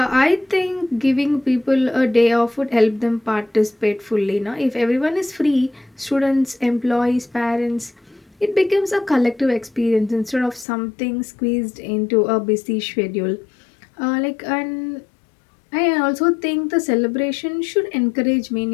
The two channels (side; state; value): right; drops out; at 10.7 s